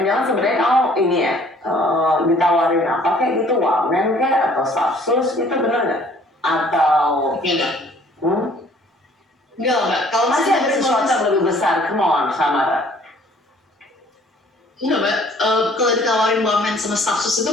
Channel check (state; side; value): normal; both; correlation 0.56